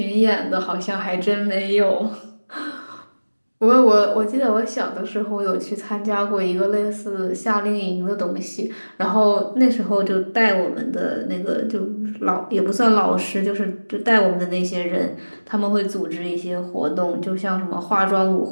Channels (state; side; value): inverted; both; correlation -1.00